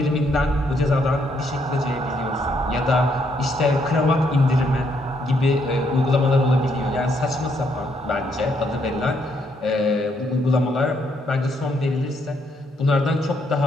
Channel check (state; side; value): normal; both; correlation 0.73